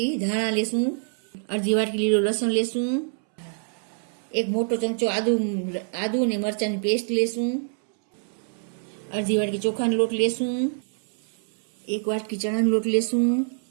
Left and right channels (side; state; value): left; silent; 61 dB below the other